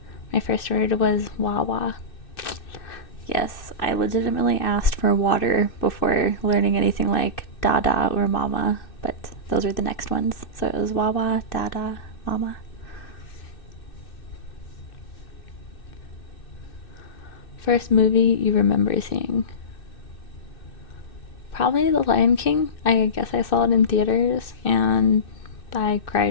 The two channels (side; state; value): right; late; 2.6 ms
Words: My first word was Wawa. Yes, I legitimately asked for water before learning anything like Dada or Mama, but those were the next ones. So it was Wawa, Dada, Mama. First movie you remember seeing? Probably The Lion King. I guess I saw it in theaters, and I